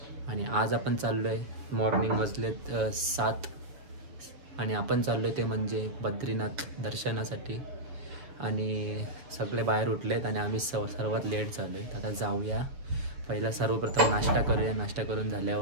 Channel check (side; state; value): left; late; 7.3 ms